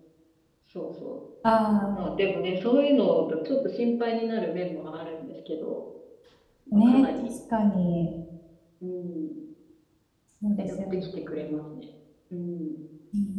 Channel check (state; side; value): identical; both; correlation 1.00